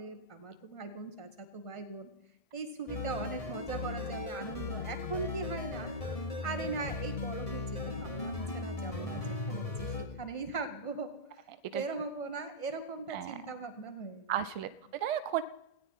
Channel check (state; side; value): late; right; 1.5 ms